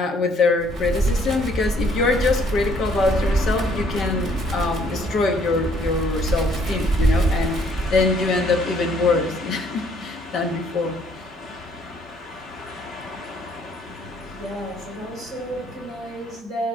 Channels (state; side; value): normal; both; correlation 0.64